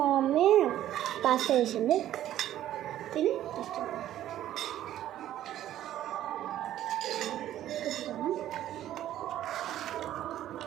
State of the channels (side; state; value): left; quieter; 12.5 dB